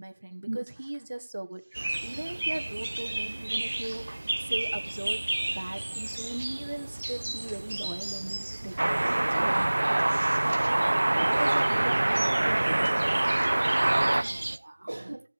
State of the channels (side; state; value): both; inverted; correlation -1.00